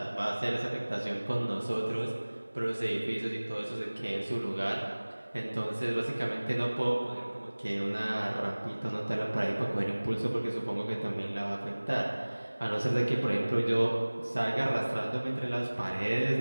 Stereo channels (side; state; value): both; inverted; correlation -1.00